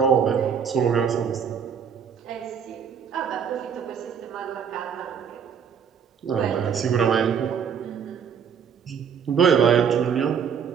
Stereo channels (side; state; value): left; quieter; 7.3 dB